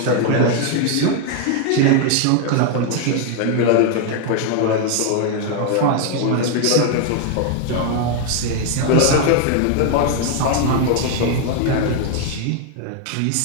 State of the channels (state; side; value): different; both; correlation 0.00